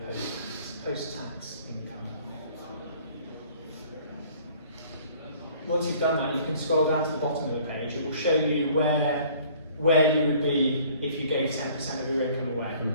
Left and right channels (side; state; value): both; inverted; correlation -0.54